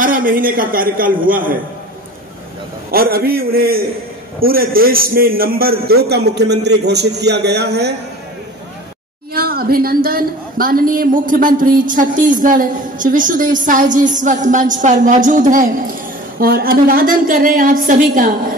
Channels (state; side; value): normal; both; correlation 0.40